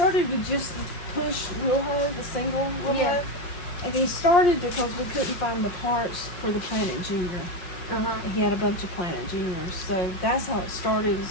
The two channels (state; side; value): late; right; 5.6 ms